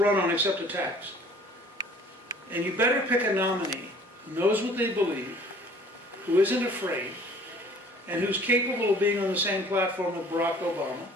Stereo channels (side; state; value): both; normal; correlation 0.52